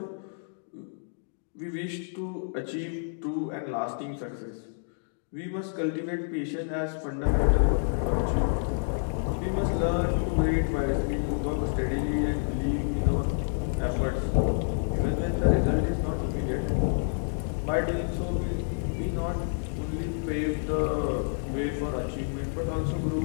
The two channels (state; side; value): silent; right; digital silence